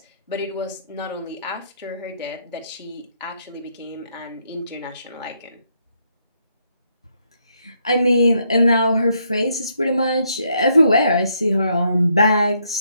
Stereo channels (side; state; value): both; inverted; correlation -0.75